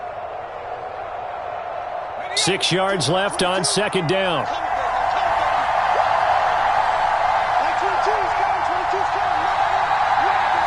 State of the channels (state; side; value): identical; both; correlation 1.00